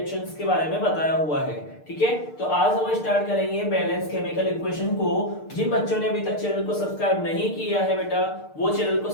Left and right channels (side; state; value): right; late; 6.6 ms